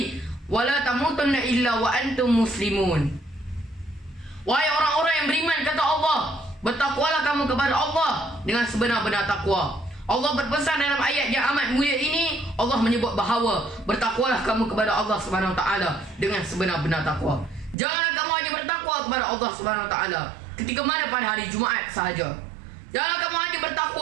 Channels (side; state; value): left; drops out; at 17.8 s